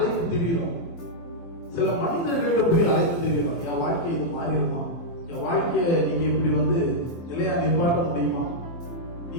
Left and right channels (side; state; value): right; late; 24 ms